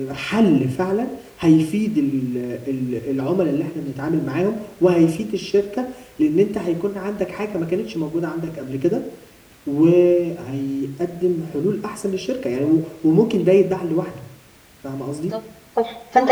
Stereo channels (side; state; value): both; identical; correlation 1.00